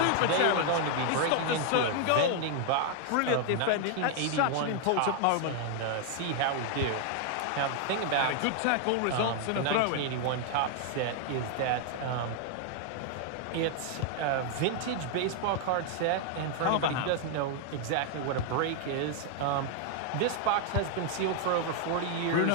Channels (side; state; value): both; different; correlation 0.00